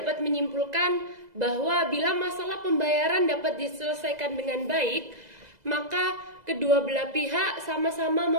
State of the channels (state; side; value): late; left; 2.0 ms